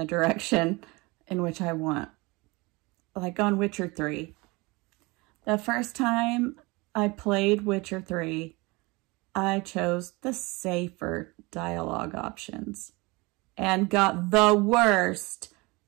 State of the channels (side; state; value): left; quieter; 24.8 dB